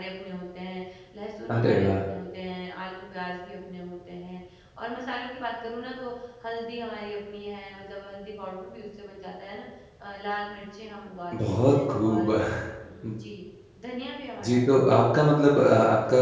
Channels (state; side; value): identical; both; correlation 1.00